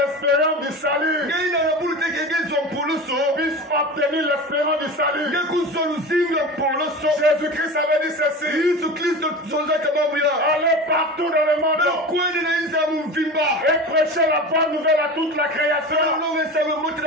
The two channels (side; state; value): both; normal; correlation 0.31